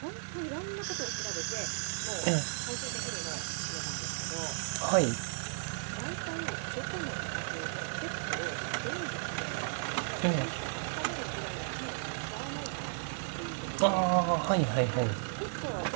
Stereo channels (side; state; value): left; silent; digital silence